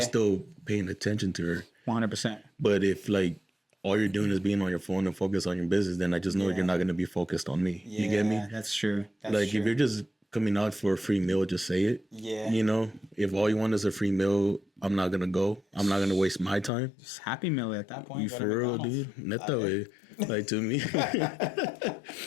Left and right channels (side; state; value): right; drops out; at 16.7 s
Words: still paying attention to her. 100%. But if like all you're doing is being on your phone and focus on your business, then I just know you're not going to be focused on me. You get me? That's true. That's Like true. if you're just coming out for a free meal, just say it. Yeah. You know, if all you want is a free meal, I'm not gonna go. I'm not gonna waste my time. It's Happy Meal at that point. You go to for real, McDonald's. dude? Not that way. Like to me,